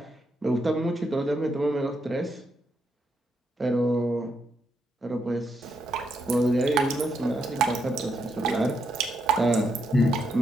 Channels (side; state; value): both; normal; correlation 0.79